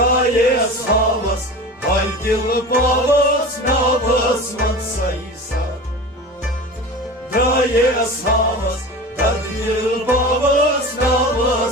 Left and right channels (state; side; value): normal; both; correlation 0.33